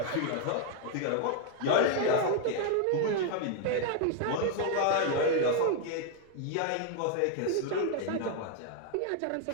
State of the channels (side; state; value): both; different; correlation 0.00